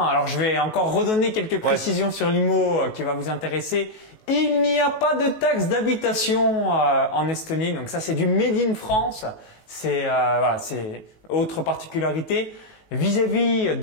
je vais encore redonner quelques précisions sur l'IMO qui va vous intéresser. Il n'y a pas de taxe d'habitation en Estonie, donc ça c'est du Made in France. C'est autre particularité. Vis-à-vis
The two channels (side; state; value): right; late; 19 ms